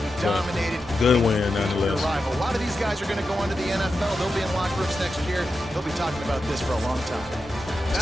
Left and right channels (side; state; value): both; normal; correlation 0.90